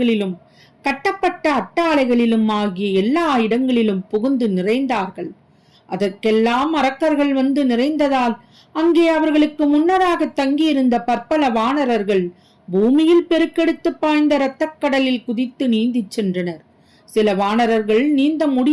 கட்டப்பட்ட அட்டாளைகளிலும் ஆகிய எல்லா இடங்களிலும் புகுந்து நிறைந்தார்கள். அதற்கெல்லாம் அரக்கர்கள் வந்து நிறைந்ததால் அங்கே அவர்களுக்கு முன்னராக தங்கியிருந்த பற்பல வானரர்கள் பூமியில் பெருக்கெடுத்து பாய்ந்த இரத்தக்கடலில் குதித்து நீந்திச் சென்றனர். சில வானரர்கள் நீந்த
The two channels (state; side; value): identical; both; correlation 1.00